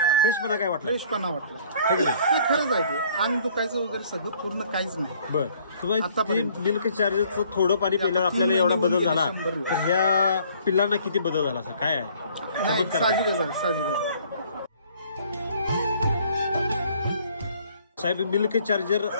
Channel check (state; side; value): inverted; both; correlation -0.59